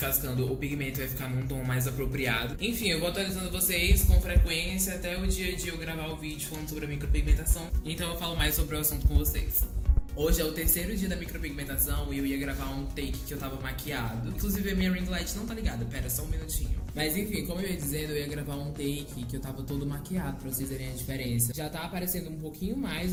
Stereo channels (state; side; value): identical; both; correlation 1.00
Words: o pigmento vai ficar num tom mais apropriado. Enfim, eu vou atualizando vocês com frequência até o dia de eu gravar o vídeo falando sobre a micropigmentação. Então eu falo mais sobre o assunto com vocês. Hoje é o 3º dia da micropigmentação e eu ia gravar um take que eu tava maquiado. Inclusive a minha ring light não tá ligada, pera, só um minutinho. Mas enfim, como eu ia dizendo, eu ia gravar um take que eu tava todo maquiado pra vocês verem a diferença. Já tá aparecendo um pouquinho mais